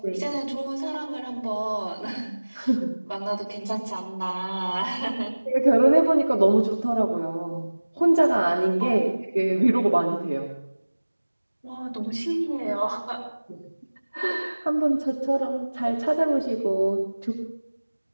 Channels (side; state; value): both; inverted; correlation -1.00